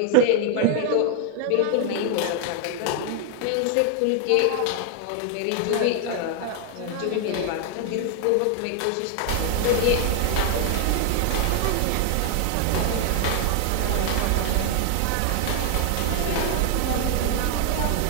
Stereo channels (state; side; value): different; both; correlation 0.00